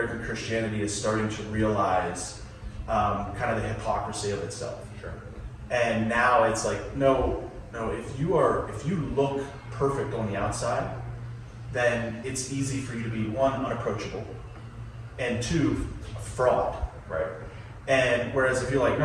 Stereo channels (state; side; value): identical; both; correlation 1.00